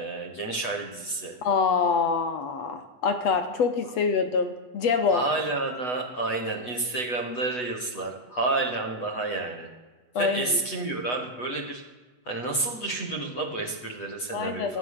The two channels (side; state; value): right; late; 8.1 ms